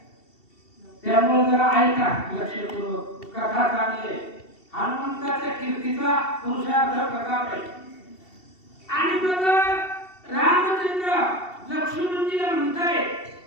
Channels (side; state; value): right; late; 2.7 ms